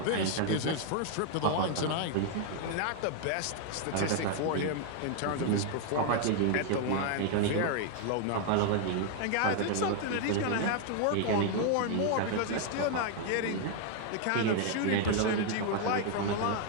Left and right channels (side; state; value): both; different; correlation 0.00